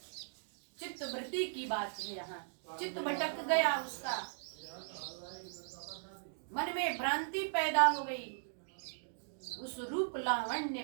चित्तवृत्ति की बात है, यहाँ चित्त भटक गया, उसका मन में भ्रांति पैदा हो गई, उस रूप लावण्य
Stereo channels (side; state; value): left; silent; digital silence